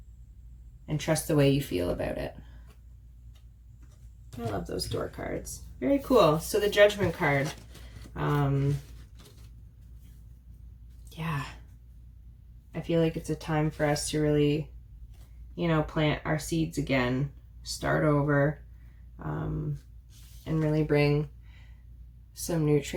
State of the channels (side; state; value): both; identical; correlation 1.00